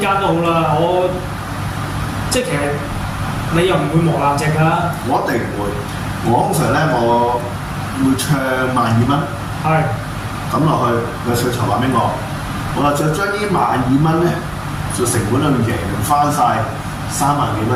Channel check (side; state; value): right; noise; hum, 22 dB below the sound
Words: 都好啦。我即係其實你又唔會磨爛隻㗎。我一定唔會。我通常咧，我會唱12000蚊。係。抌落去個水籌話俾我，我就將呢12000蚊咧，就成本裏面贏翻晒3萬幾